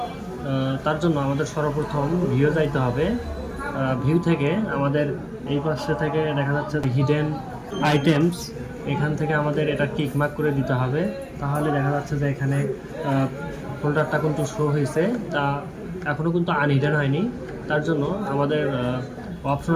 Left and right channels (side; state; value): both; identical; correlation 1.00